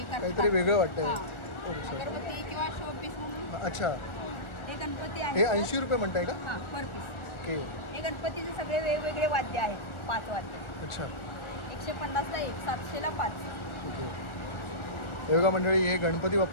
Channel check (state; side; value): late; right; 1.4 ms